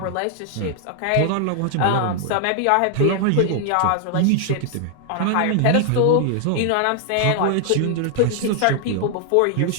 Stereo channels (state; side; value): different; both; correlation 0.00